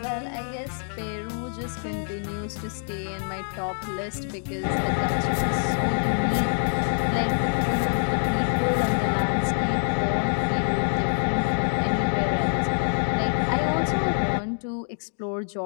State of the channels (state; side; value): silent; right; 61 dB below the other